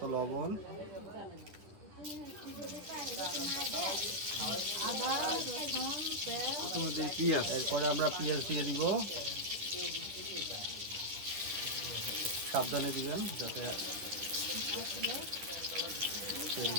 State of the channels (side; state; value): left; late; 10 ms